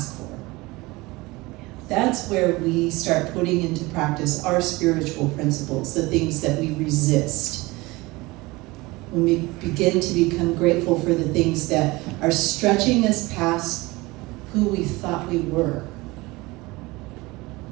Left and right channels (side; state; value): left; quieter; 22.1 dB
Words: for. That's where we start putting into practice our spiritual principles, the things that we resist. When we begin to become grateful for the things that are stretching us past who we thought we were.